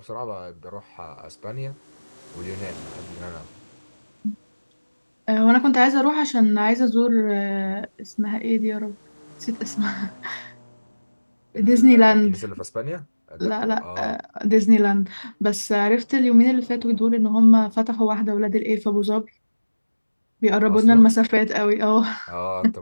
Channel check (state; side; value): inverted; both; correlation -1.00